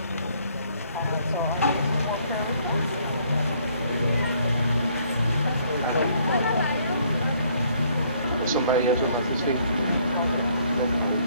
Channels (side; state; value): both; inverted; correlation -0.65